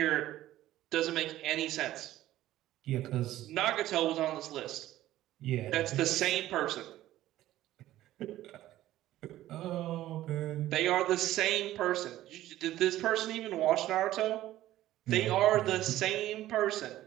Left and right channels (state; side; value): quieter; left; 14.4 dB